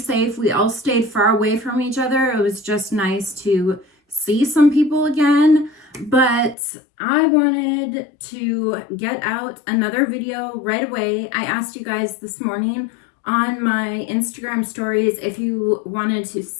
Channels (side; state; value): right; drops out; at 6.6 s